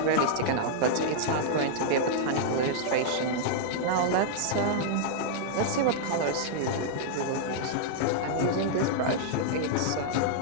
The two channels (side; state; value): both; different; correlation -0.02